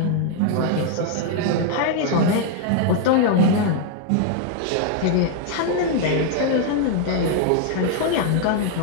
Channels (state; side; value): different; both; correlation 0.00